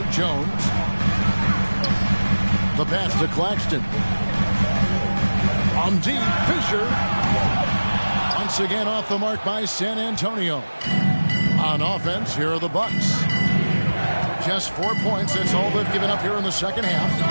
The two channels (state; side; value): inverted; both; correlation -1.00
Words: Jones. The pass to Claxton. On deep, Fisher. Once again off the mark by San Antonio. On offense, here are the Bucks. Just 4 points. That's all they've given up here in the second half.